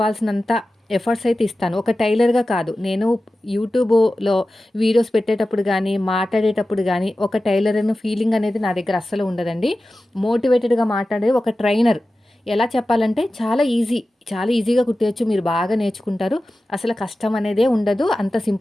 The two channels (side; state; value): both; normal; correlation 0.95